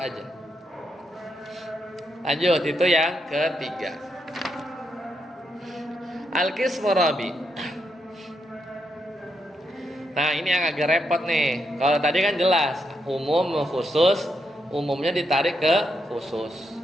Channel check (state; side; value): normal; both; correlation 0.81